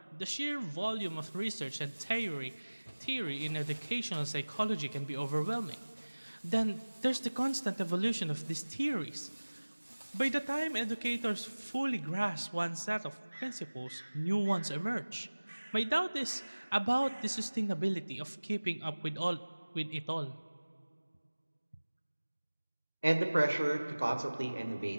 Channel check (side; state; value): both; inverted; correlation -1.00